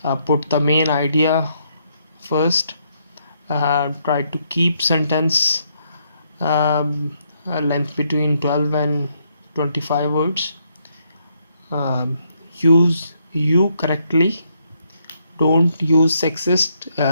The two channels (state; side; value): inverted; both; correlation -0.75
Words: put the main idea first, try to keep sentence length between 12 and 25 words, use you correctly, don't use sexist